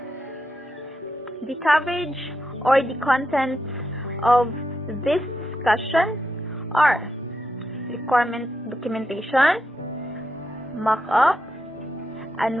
The coverage or the contents of this discussion are requirement documentation, mock-up,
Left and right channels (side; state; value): both; normal; correlation 0.84